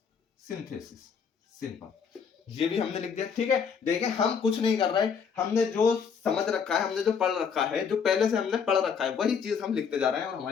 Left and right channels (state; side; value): quieter; right; 6.5 dB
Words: simple, ये भी हमने लिख दिया, ठीक है। देखिए हम कुछ नहीं कर रहे, हमने जो समझ रखा है, हमने जो पढ़ रखा है, जो पहले से हमने पढ़ रखा है, वही चीज हम लिखते जा रहे हैं और